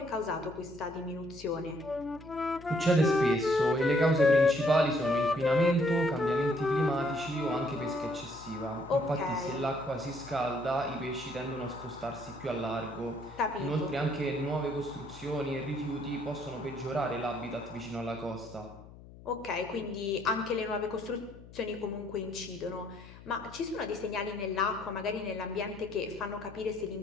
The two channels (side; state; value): left; noise; hum, 18 dB below the sound